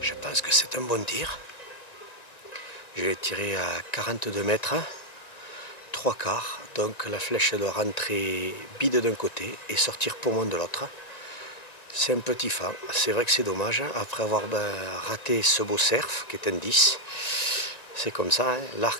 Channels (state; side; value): late; right; 1.9 ms